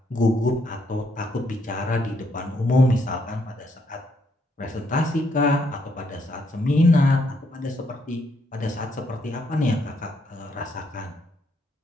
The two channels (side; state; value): both; normal; correlation 0.73